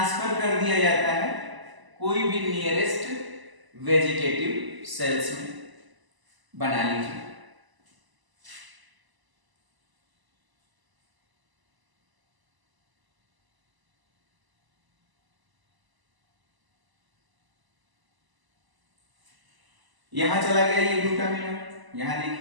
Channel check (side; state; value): left; late; 1.0 ms